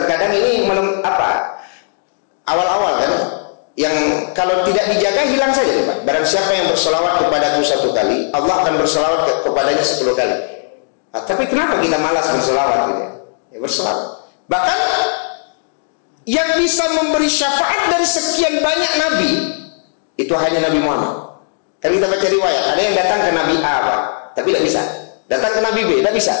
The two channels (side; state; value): right; silent; digital silence